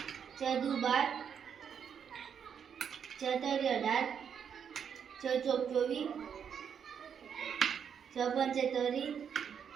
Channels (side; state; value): left; quieter; 7.6 dB